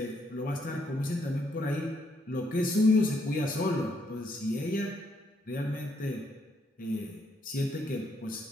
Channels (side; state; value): both; normal; correlation 0.74